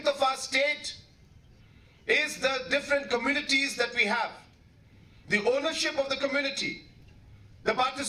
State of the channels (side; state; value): both; identical; correlation 1.00